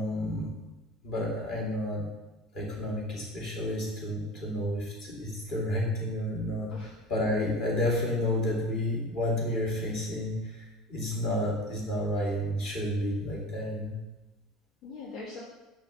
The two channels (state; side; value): normal; both; correlation 0.34